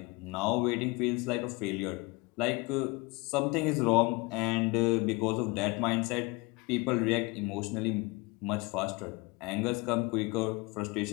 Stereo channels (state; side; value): quieter; right; 25.9 dB